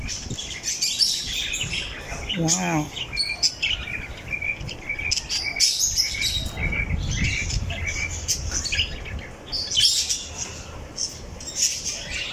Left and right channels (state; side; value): identical; both; correlation 1.00